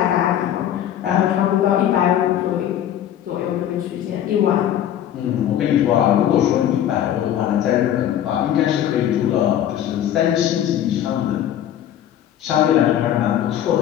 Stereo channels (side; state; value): right; quieter; 10.9 dB